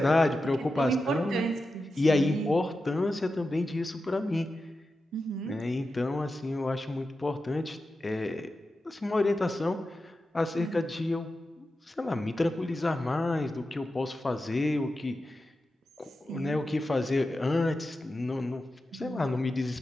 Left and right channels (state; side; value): normal; both; correlation 0.91